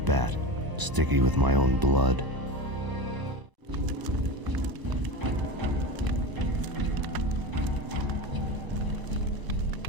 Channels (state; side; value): late; left; 1.0 ms